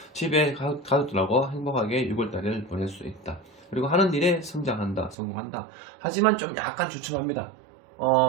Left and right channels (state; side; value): drops out; left; at 5.2 s